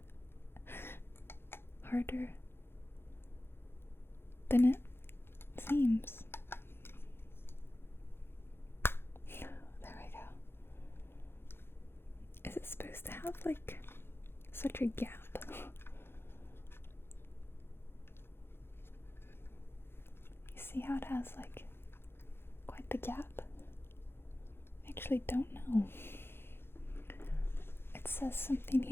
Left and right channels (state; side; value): late; right; 0.11 ms